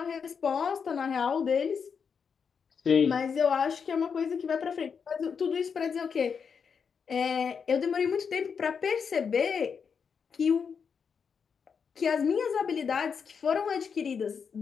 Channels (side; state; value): right; quieter; 6.3 dB